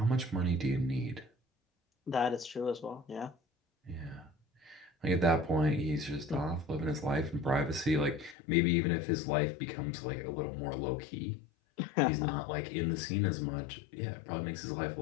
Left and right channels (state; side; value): drops out; right; at 8.3 s